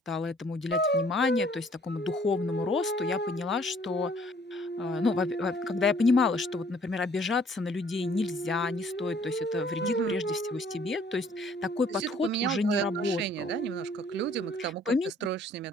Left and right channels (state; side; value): normal; both; correlation 0.59